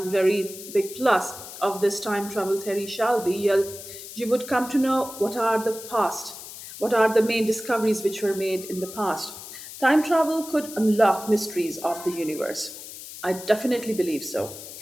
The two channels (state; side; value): noise; left; hiss, 13 dB below the sound